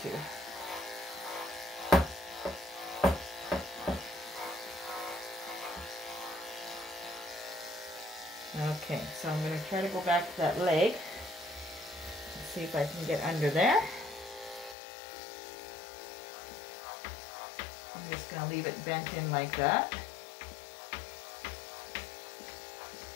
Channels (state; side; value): drops out; right; at 14.8 s